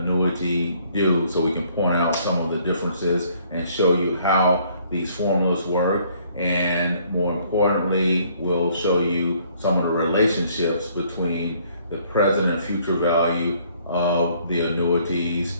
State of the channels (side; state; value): both; inverted; correlation -0.63